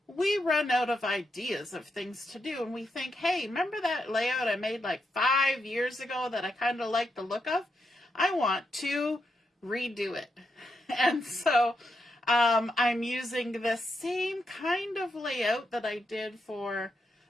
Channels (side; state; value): both; normal; correlation 0.83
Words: we run out of ideas of things to do and we think, hey, remember that layout I made like 5 years ago that I kind of like the look of? I want to redo it. And so I'm using the same kind of layout that I did for